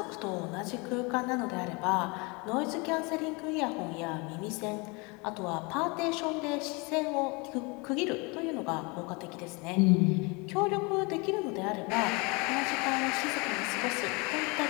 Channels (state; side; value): quieter; right; 28.6 dB